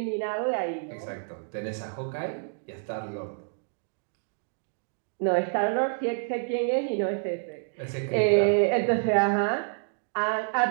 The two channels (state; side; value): silent; left; digital silence